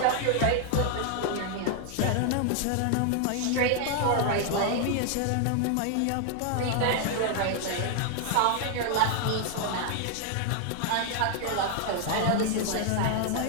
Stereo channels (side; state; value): both; different; correlation 0.00